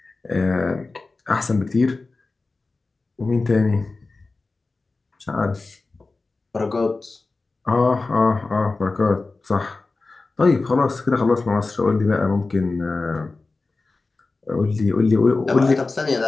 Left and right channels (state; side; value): quieter; right; 3.6 dB